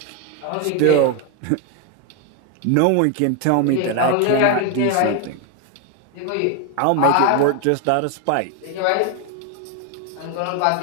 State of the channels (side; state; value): both; different; correlation 0.01